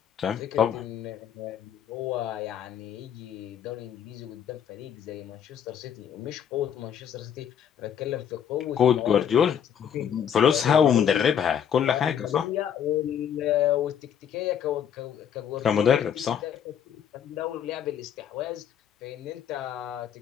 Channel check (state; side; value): quieter; right; 8.8 dB